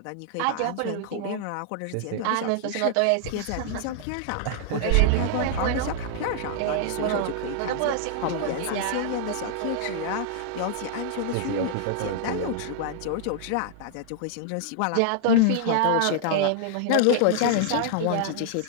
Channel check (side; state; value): both; different; correlation -0.01